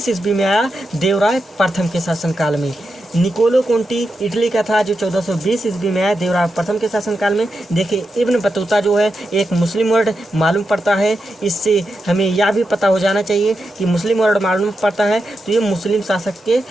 ईस्वी में आया, देवराय प्रथम के शासनकाल में। निकोलो कोंटी इटली का था, जो 1420 ईस्वी में आया देवराय प्रथम के शासनकाल में। देखिए इब्न बतूता जो है एक मुस्लिम वर्ड मालूम पड़ता है, इससे हमें यह भी पता हो जाना चाहिए कि मुस्लिम वर्ड मालूम पड़ता है तो ये मुस्लिम शासक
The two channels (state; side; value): normal; both; correlation 0.87